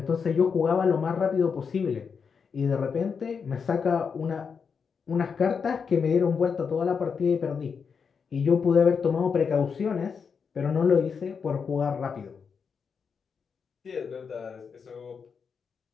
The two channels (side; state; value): right; quieter; 6.0 dB